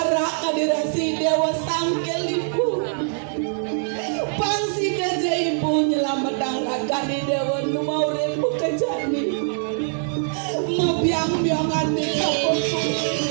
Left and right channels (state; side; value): silent; left; digital silence